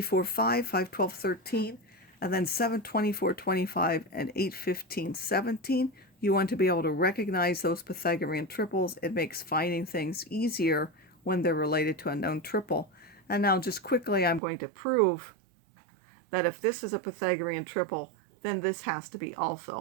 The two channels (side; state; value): left; drops out; at 14.4 s